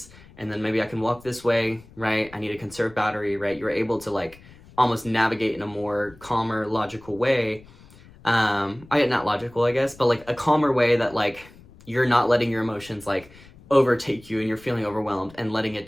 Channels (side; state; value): left; noise; rumble, 23 dB below the sound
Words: and then maybe I can walk this way, right? I need to conserve battery, right? You're able to like almost navigate in a more calmer, logical way. Not logical, I guess, but like a calmer way that like you're not letting your emotions like overtake you and you're feeling overwhelmed and letting it